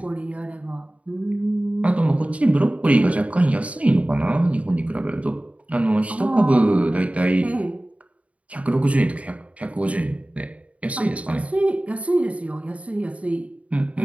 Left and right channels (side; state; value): left; late; 0.066 ms